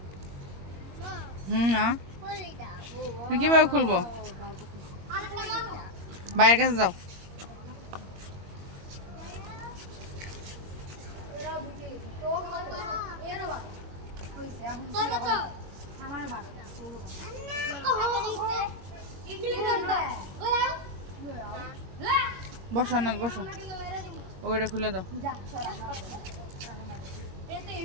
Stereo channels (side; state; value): left; late; 21 ms